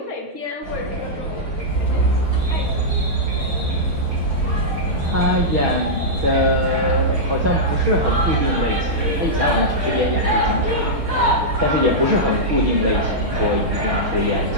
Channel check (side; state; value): left; late; 6.2 ms